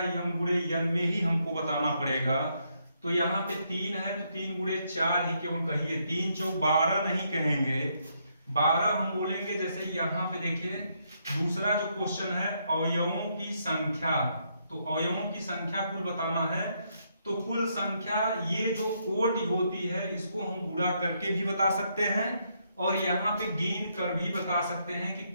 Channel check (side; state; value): both; inverted; correlation -0.76